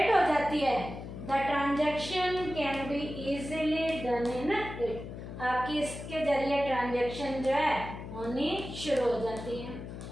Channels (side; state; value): left; noise; hum, 10 dB below the sound